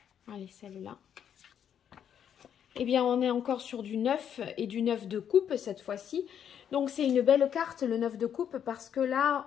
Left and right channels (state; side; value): quieter; right; 8.8 dB